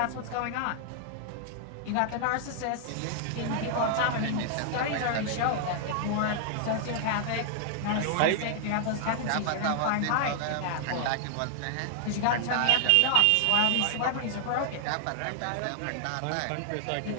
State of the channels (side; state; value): both; different; correlation -0.01